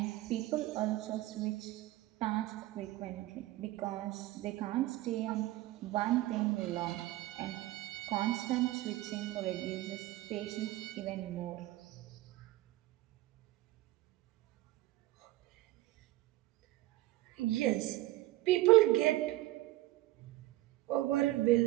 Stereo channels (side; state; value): left; quieter; 17.2 dB